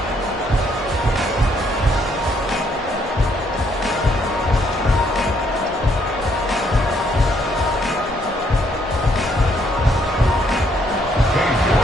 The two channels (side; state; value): both; normal; correlation 0.70